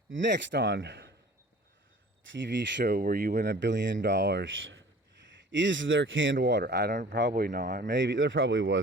Next on TV show where you win $1 billion. Is there canned water? I don't, probably not. Maybe there probably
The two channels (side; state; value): both; normal; correlation 0.46